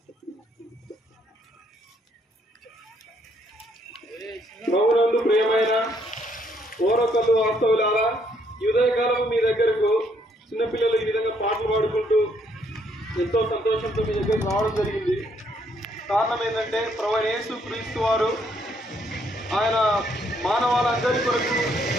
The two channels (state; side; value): normal; both; correlation 0.70